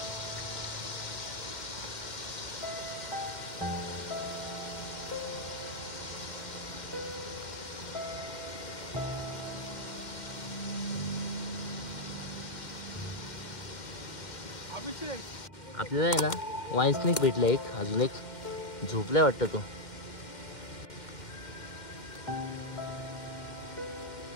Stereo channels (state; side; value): late; right; 2.1 ms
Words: आपल्याला आहे ना वाईन स्नेक भेटला एक, अजून एक झोपलाय वाटतं तो.